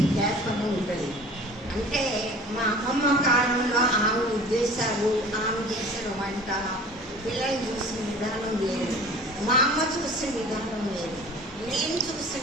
గ్యాప్ అని ఉంటుంది. అంటే మా అమ్మమ్మ కాలంలో ఆమె ఉద్దేశాలు, ఆమె చేసిన వంట, పిల్లలు చూసిన విధానం లేదు, మా అమ్మ చూసిన విధానం లేదు, నేను చూసిన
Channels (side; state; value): both; normal; correlation 0.44